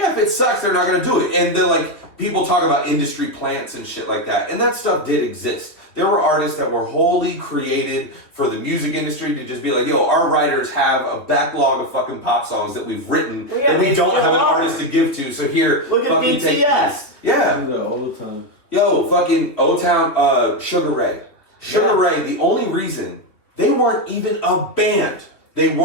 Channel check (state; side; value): late; right; 3.4 ms